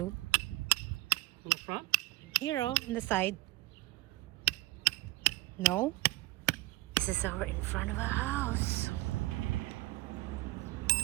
In the front? Here, oh, on the side. No? This is our in front of a house.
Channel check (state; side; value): quieter; left; 20.1 dB